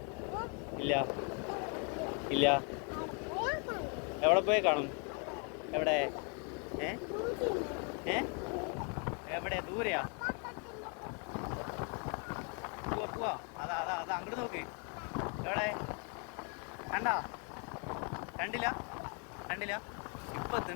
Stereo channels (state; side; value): quieter; right; 37.6 dB